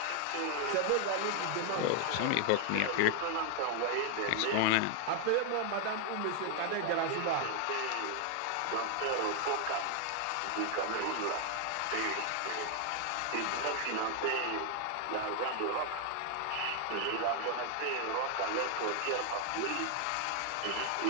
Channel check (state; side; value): different; both; correlation 0.00